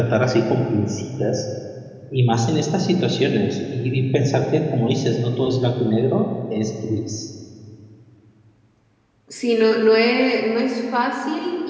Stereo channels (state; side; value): identical; both; correlation 1.00